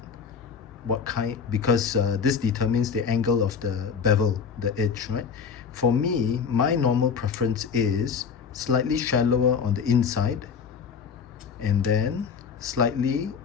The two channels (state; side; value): quieter; right; 6.3 dB